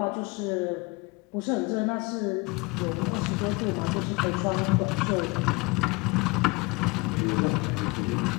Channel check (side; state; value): right; quieter; 26.5 dB